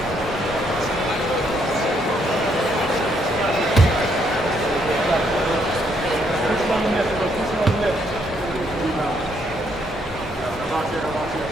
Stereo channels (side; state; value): both; normal; correlation 0.72